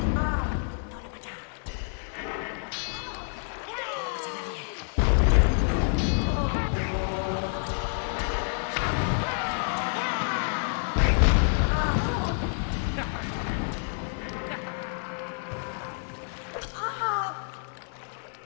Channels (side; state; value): right; silent; 59 dB below the other